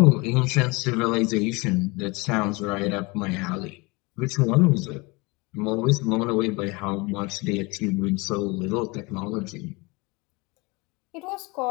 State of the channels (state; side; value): quieter; right; 25.9 dB